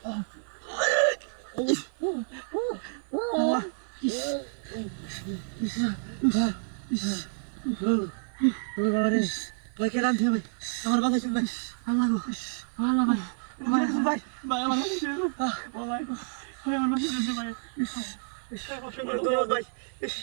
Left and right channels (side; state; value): left; silent; 56 dB below the other